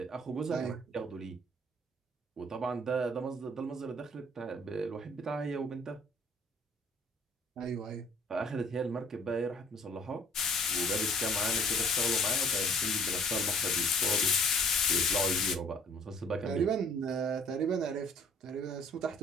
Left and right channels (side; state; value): both; normal; correlation 0.55